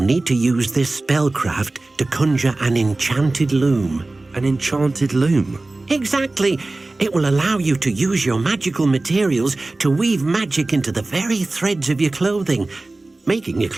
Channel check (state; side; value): quieter; left; 3.1 dB